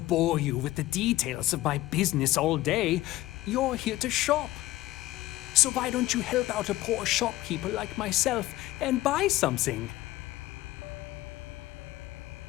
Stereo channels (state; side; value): quieter; right; 16.6 dB